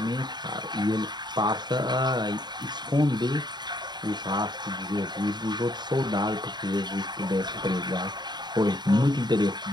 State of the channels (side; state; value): left; late; 0.21 ms